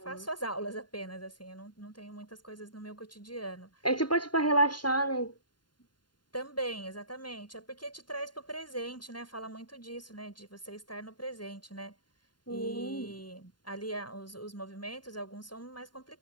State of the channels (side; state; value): right; late; 0.71 ms